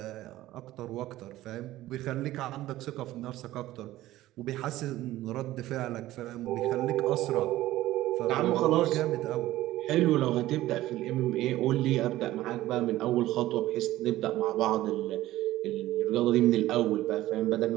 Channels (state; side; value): quieter; left; 15.7 dB